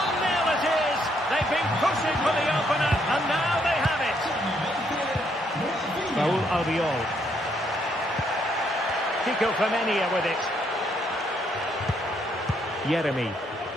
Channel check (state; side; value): normal; both; correlation 0.72